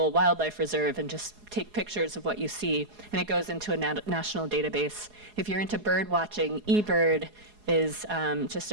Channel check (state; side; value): late; left; 4.8 ms